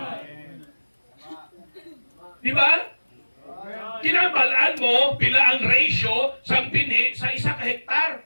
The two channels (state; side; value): inverted; both; correlation -1.00